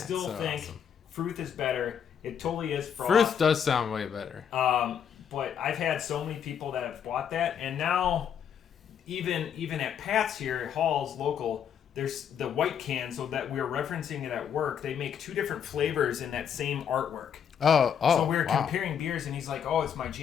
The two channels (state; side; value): quieter; right; 8.2 dB